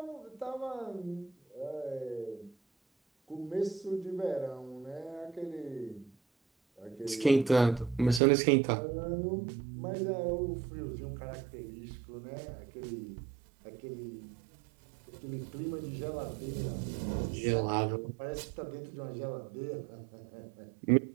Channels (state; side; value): drops out; left; at 8.2 s